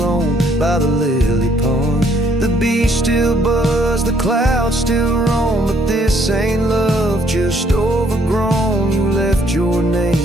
by the lily pond. The bees still buzz, the clouds still roam, but this ain't love, just overgrown. You left your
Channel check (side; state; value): both; normal; correlation 0.66